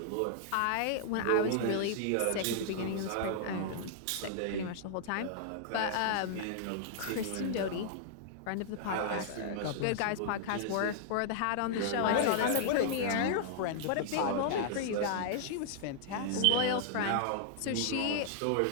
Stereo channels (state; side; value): different; both; correlation -0.01